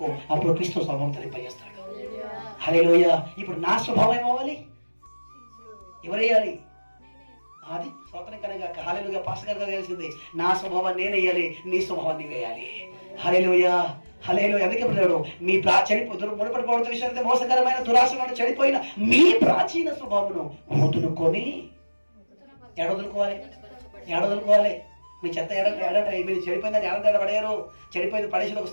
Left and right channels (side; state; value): both; inverted; correlation -1.00